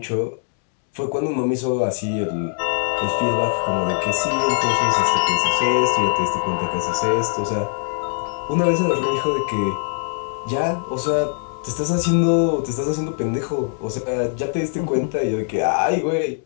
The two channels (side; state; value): right; silent; 65 dB below the other